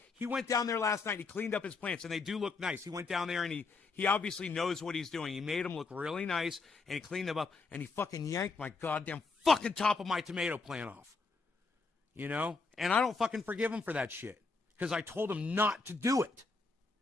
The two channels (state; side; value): quieter; right; 4.1 dB